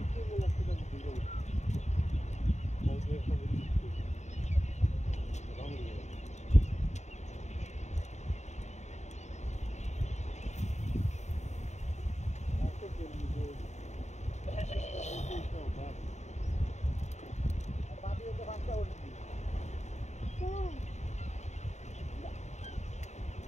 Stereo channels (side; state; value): right; late; 0.33 ms